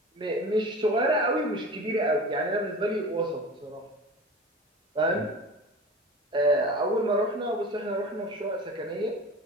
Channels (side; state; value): both; normal; correlation 0.35